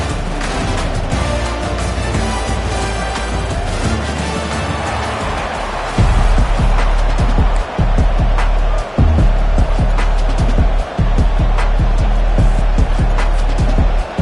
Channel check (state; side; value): identical; both; correlation 1.00